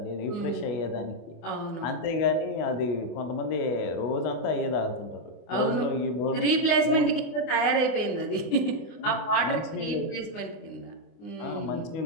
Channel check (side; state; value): right; late; 24 ms